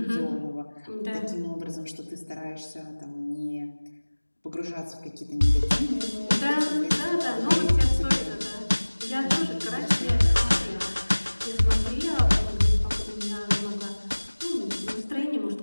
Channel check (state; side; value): inverted; both; correlation -1.00